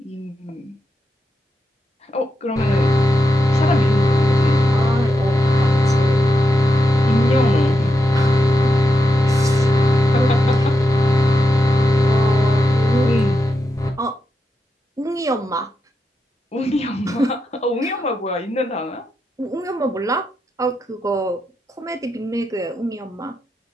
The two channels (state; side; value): normal; both; correlation 0.86